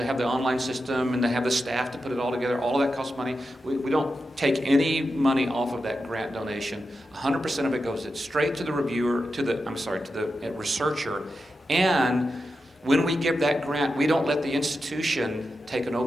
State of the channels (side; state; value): both; normal; correlation 0.89